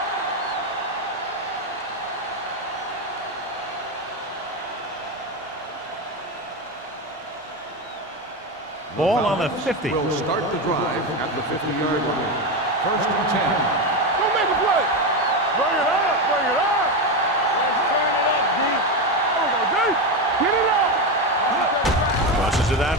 Ball on the 50. Will start the drive at the 50-yard line. First and 10. Go make a play. Bring it up. Bring it up. Let's turn it up, D. There we go, D. Get it up. Crosses it out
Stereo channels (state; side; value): normal; both; correlation 0.13